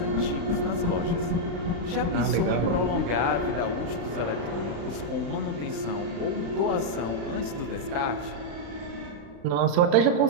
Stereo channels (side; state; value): left; late; 35 ms